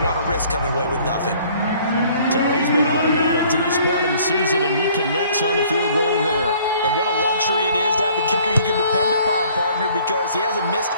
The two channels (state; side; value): inverted; both; correlation -0.57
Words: want to risk coming away with nothing. So he's been automatic to this point of the season, and he connects on the field goal there. And what a luxury it is to have a kicker you can depend upon, partner, because he hasn't missed